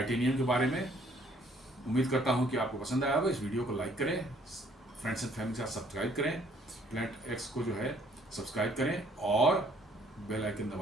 के बारे में। उम्मीद करता हूं कि आपको पसंद आया होगा। इस वीडियो को लाइक करें, फ्रेंड्स एंड फैमिली के साथ सब्सक्राइब करें, प्लैनेट एक्स को जो है सब्सक्राइब करें और बेल आइकन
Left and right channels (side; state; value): both; normal; correlation 0.62